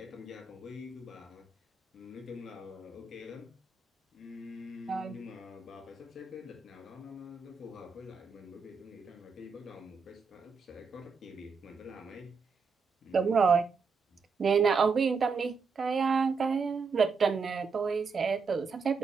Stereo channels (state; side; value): quieter; left; 4.9 dB